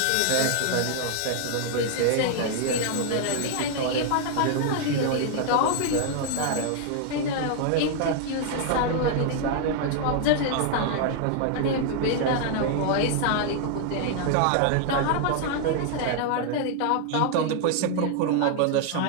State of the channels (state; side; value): different; both; correlation 0.00